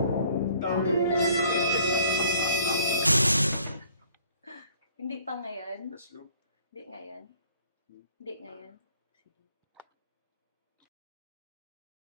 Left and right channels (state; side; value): inverted; both; correlation -0.57